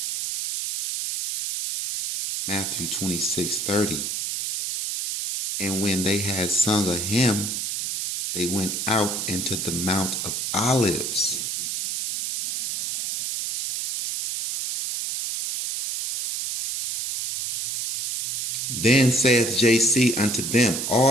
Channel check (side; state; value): right; noise; hiss, 3 dB below the sound